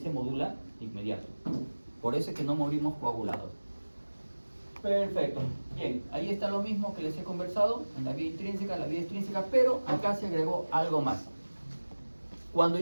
se modula de inmediato. Por eso es que no morimos coagulados. Perfecto. Bien, ahí está lo mismo que les he conversado, en la vía intrínseca, la vía extrínseca, pero acá se agregó algo más. Cuando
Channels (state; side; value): inverted; both; correlation -1.00